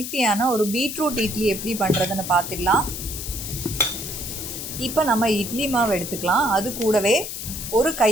ஒரு பீட்ரூட் இட்லி எப்படி பண்ணுறதுன்னு பார்த்துடலாம். இப்போ நம்ம இட்லி மாவு எடுத்துக்கலாம். அது கூடவே ஒரு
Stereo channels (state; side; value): noise; left; hiss, 7 dB below the sound